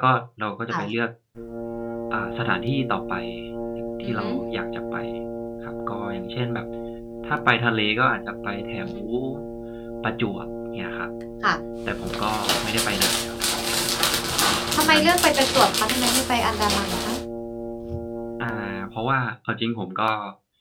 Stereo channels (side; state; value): both; identical; correlation 1.00